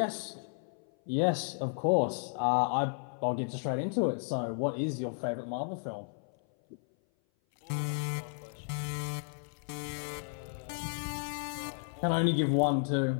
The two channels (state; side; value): silent; right; 56 dB below the other